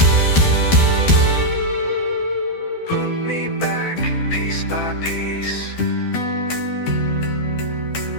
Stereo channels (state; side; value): late; right; 12 ms